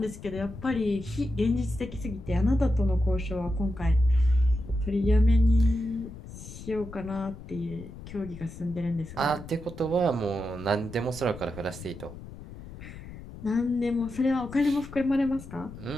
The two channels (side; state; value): left; noise; rumble, 14 dB below the sound